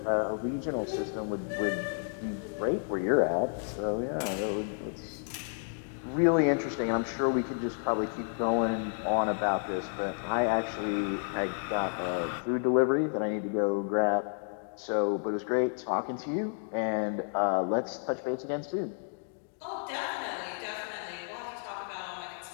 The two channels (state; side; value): silent; right; digital silence